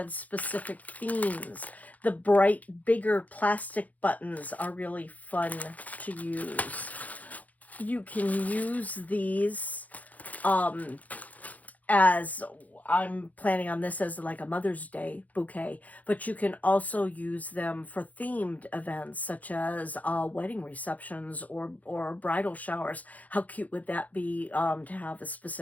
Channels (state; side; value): late; right; 0.076 ms